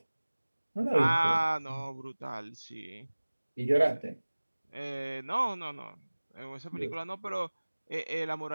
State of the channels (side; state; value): both; inverted; correlation -1.00